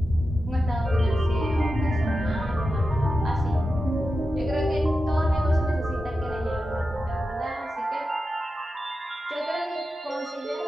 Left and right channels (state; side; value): normal; both; correlation 0.91